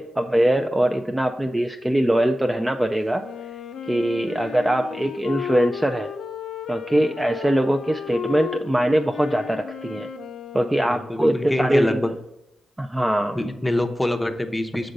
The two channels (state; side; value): normal; both; correlation 0.95